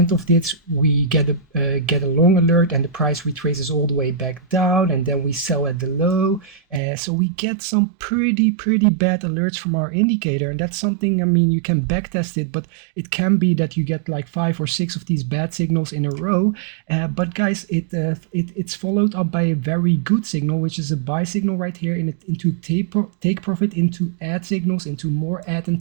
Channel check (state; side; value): drops out; left; at 6.8 s